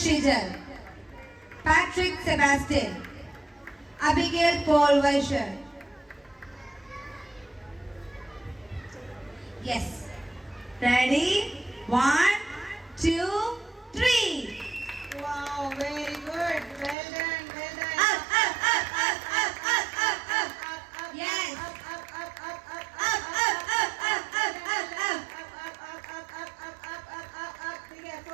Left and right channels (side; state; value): left; drops out; at 16.9 s